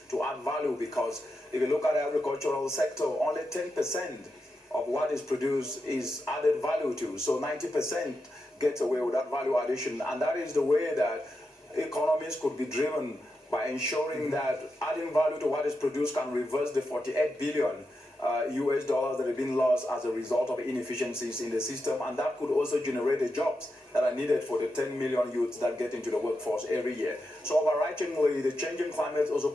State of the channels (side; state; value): both; normal; correlation 0.87